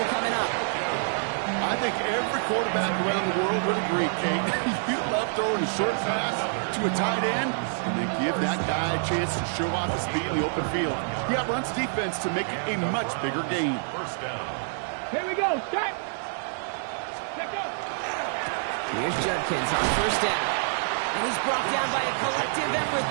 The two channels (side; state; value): left; silent; 56 dB below the other